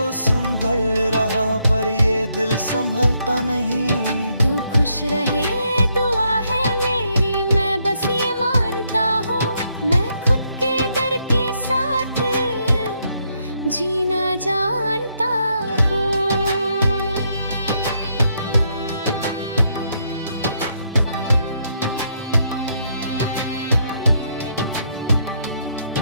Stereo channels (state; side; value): inverted; both; correlation -0.75